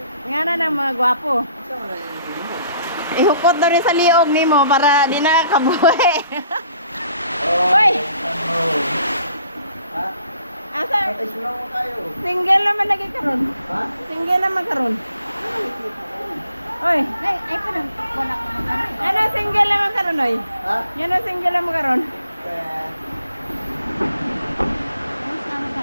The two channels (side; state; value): both; inverted; correlation -0.61